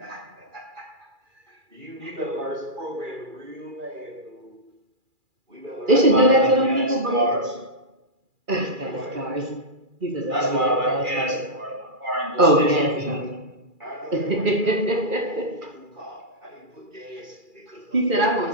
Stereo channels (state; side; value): late; left; 2.4 ms